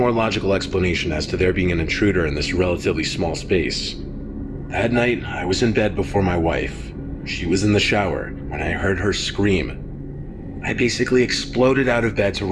logical explanation as to there being an intruder in this relatively small space. That night, I was in bed before my wife. She was in the shower when I heard her scream. I basically exploded out of bed to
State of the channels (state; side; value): identical; both; correlation 1.00